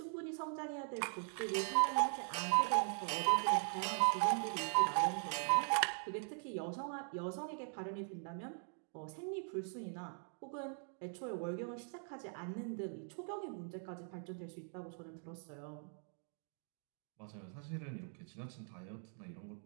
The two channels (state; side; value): silent; left; 50 dB below the other